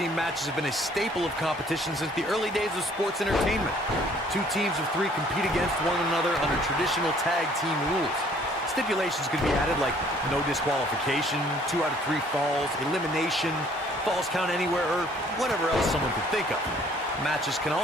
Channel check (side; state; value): both; normal; correlation 0.59